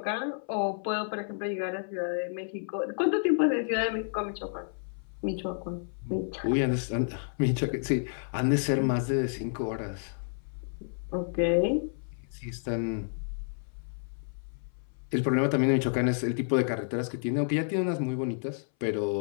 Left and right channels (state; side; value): silent; right; 58 dB below the other